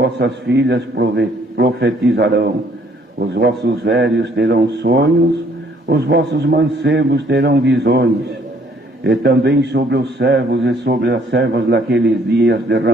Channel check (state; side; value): normal; both; correlation 0.63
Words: filhas profetizarão, os vossos velhos terão sonhos, os vossos mancebos terão visões, e também sobre os servos e sobre as servas naqueles dias